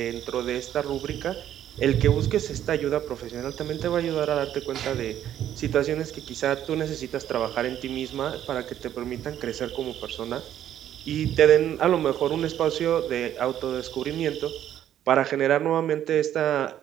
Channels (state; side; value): quieter; left; 11.1 dB